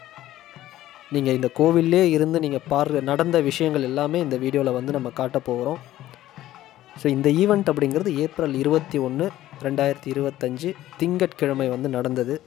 நீங்கள் இந்த கோவிலே இருந்து நீங்கள் நடந்த விஷயங்கள் எல்லாமே இந்த வீடியோவில் நம்ம காட்ட போகிறோம். ஸோ இந்த ஈவெண்ட் அப்படிங்கிறது ஏப்ரல் 21, 2025 திங்கட்கிழமை நடந்தது.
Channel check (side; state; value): right; quieter; 14.2 dB